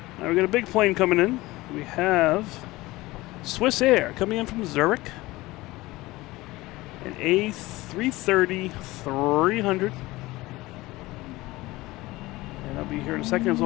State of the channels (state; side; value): quieter; right; 19.6 dB